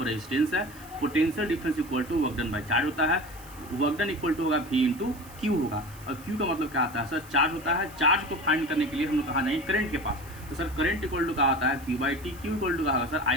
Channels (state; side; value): noise; right; hiss, 21 dB below the sound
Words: रेजिस्टेंस है, potential difference equal to work done by charge होता है, वर्क डन इक्वल टू होगा V इंटू क्यू होगा, और क्यू का मतलब क्या आता है सर, चार्ज होता है। चार्ज को फाइंड करने के लिए हम लोग कहाँ जाएंगे, करंट के पास, तो सर करंट इक्वल टू क्या आता है Q/T, क्यू इक्वल टू क्या होगा सर I